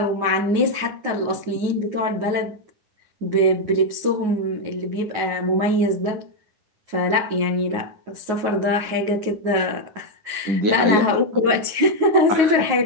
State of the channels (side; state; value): left; late; 9.4 ms